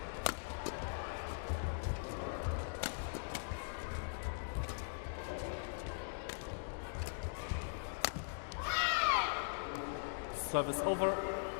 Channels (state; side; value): silent; right; digital silence